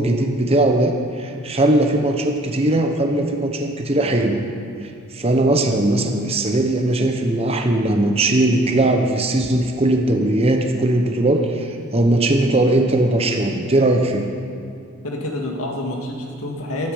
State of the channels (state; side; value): normal; both; correlation 0.58